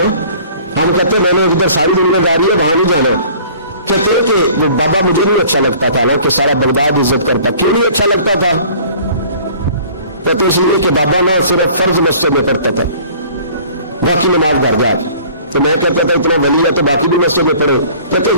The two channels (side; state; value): both; inverted; correlation -0.50